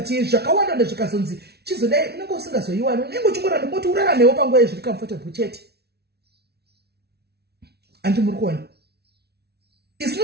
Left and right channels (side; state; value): left; late; 0.48 ms